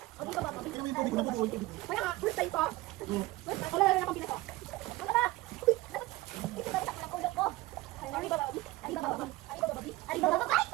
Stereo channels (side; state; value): left; quieter; 19.0 dB